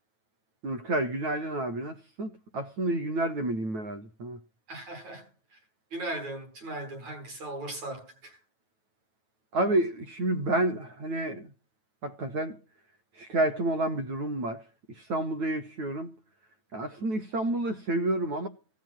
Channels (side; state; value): left; late; 9.2 ms